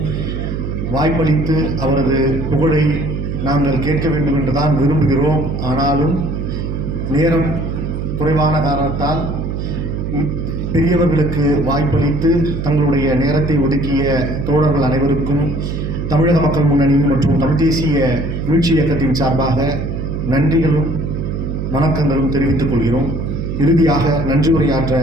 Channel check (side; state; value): right; noise; hum, 4 dB below the sound